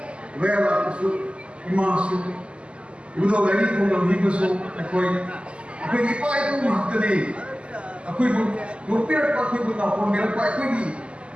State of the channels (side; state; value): left; late; 0.056 ms